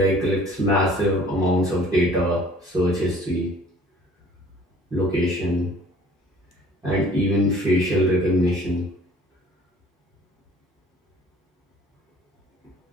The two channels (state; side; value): normal; both; correlation 0.52